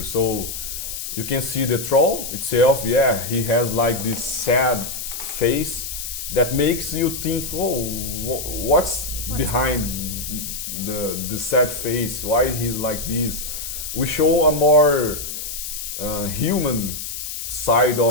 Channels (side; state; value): left; noise; hiss, 6 dB below the sound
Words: So you can see the troll itself. Yeah, he has like this sad face that makes you think, oh, what's behind the sad face? Why he's like this? We show a more human side